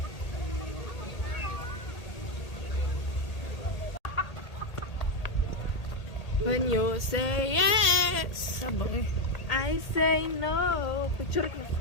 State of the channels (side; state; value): right; late; 1.8 ms